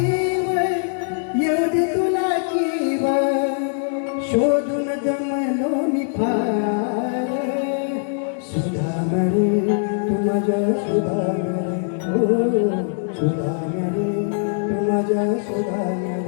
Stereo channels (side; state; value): right; silent; digital silence